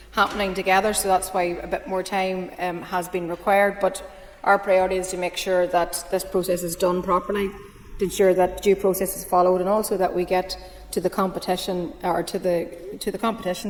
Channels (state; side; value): identical; both; correlation 1.00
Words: happening together, so that's why a bit more time has been required. But our priority is to make sure that this process is done properly, to ensure that due process is followed, and also that we get to the competition or to the